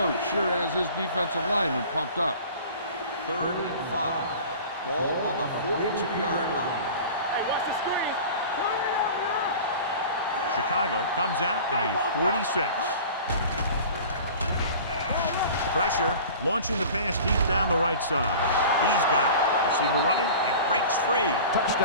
sure has his defensive lineman pumped up. Third and 5. Ball on the 42-yard line. Hey, watch the screen. Turn it out now. Chicago comes out in a 46. Pressure, launching the pass deep down the right side. He's got it. Receiver running and breaks free.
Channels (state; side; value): inverted; both; correlation -0.40